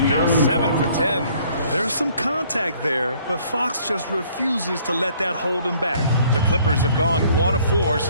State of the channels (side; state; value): both; inverted; correlation -0.60